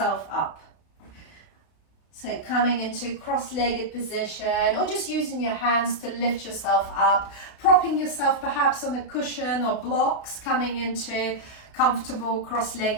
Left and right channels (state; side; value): late; right; 32 ms